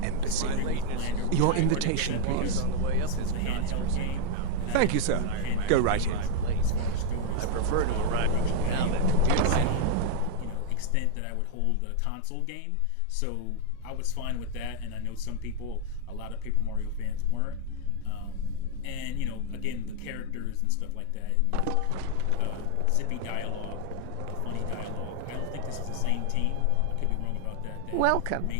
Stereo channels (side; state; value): both; different; correlation 0.00